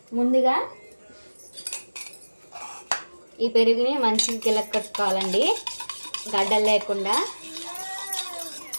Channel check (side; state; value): both; inverted; correlation -1.00